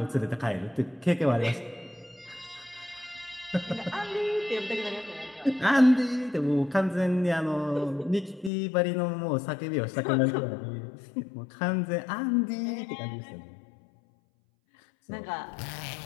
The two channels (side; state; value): right; drops out; at 8.5 s